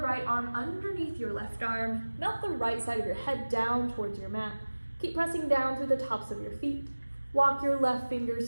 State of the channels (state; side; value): inverted; both; correlation -1.00